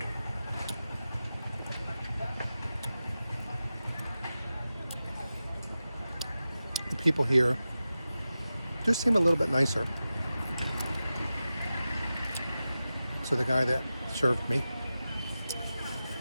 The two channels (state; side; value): inverted; both; correlation -0.93